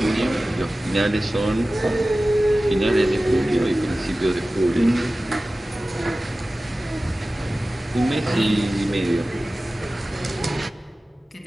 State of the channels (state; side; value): normal; both; correlation 0.96